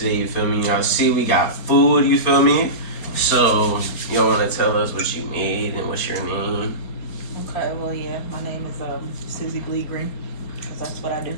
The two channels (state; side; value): late; right; 4.3 ms